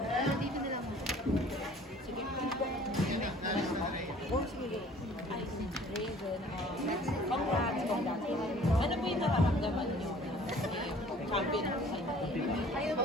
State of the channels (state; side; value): normal; both; correlation 0.52